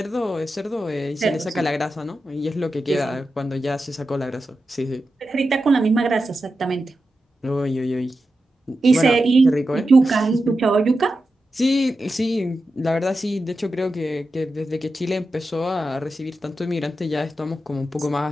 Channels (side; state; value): both; normal; correlation 0.90